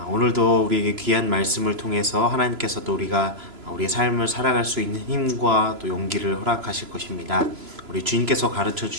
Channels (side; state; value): left; late; 3.0 ms